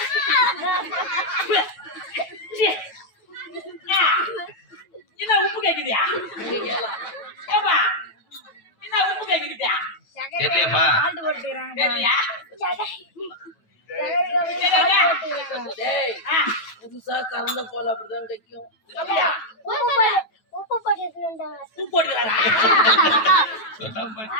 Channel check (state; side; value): late; right; 9.2 ms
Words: என்ன உப்பு கேக்குதியா? என்ன உப்பு கேக்குதியா? தெரியலையாப்பா? தெரியலையா? புதுசா கறந்த போல அப்படிதான் கைக்கும். உப்பு போட்டுக்கிறாரா?